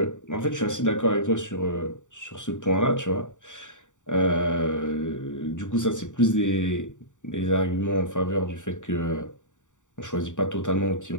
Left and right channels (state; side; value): late; right; 0.86 ms